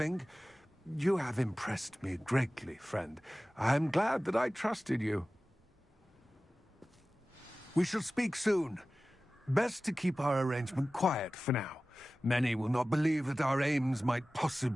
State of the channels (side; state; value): both; normal; correlation 0.96